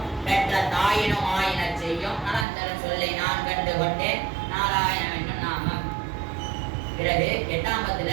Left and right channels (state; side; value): drops out; left; at 2.5 s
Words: பெற்ற தாயினும் ஆயின செய்யும் நலந்தரும் சொல்லை நான் கண்டு கொண்டேன் நாராயணவென்னும் நாமம். பிறகு 8ஆம் பத்துல